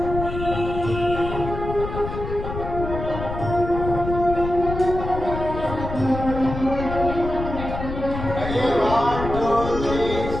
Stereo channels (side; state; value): left; noise; rumble, 6 dB below the sound